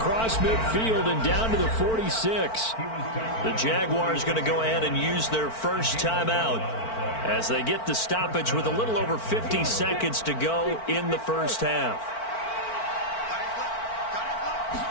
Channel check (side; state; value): right; late; 4.5 ms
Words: midfield and down to the 46. The Jaguars going to go ahead and use their first timeout as they get the stoppage with a little over 50 seconds to go in the first half.